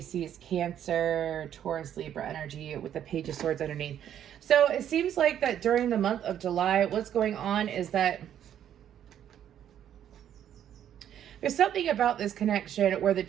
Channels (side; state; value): left; quieter; 10.2 dB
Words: Cancer, Taurus, Libra energy with the Page of Swords underneath. So it seems like that during the month of July, what's going on is that there's something about this connection where the